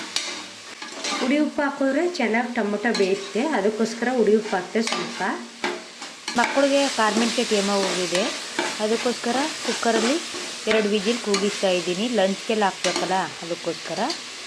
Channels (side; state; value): both; identical; correlation 1.00